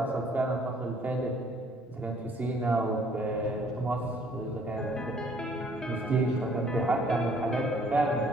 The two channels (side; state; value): both; normal; correlation 0.60